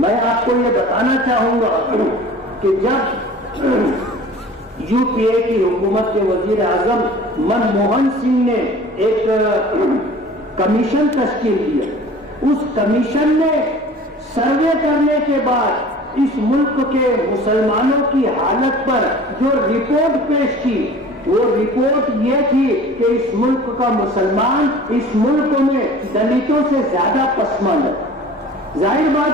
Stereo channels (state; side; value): normal; both; correlation 0.44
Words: آپ کو یہ بتانا چاہوں گا کہ جب یو پی اے کی حکومت کے وزیر اعظم منموہن سنگھ نے ایک کمیشن تشکیل کیا، اس کمیشن نے سروے کرنے کے بعد اس ملک کے مسلمانوں کی حالت پر جو رپورٹ پیش کی وہ رپورٹ یہ تھی کہ اس ملک کا مسلمان اس ملک میں دلتوں سے زیادہ پسماندہ ہے۔ ظاہر